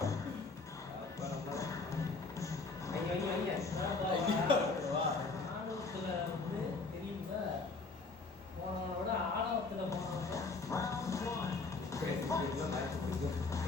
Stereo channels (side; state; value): right; quieter; 4.0 dB